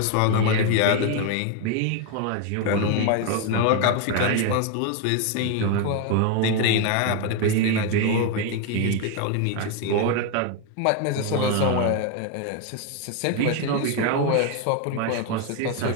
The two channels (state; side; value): different; both; correlation 0.01